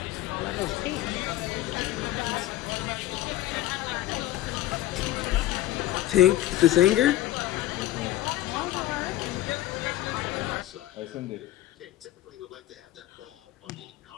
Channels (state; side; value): quieter; right; 14.9 dB